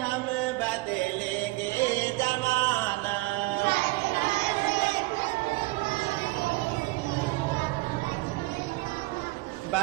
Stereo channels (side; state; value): left; quieter; 22.3 dB